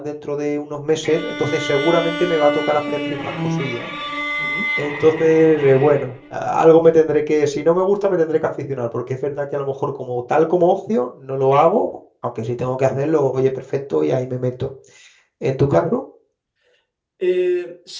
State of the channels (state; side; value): identical; both; correlation 1.00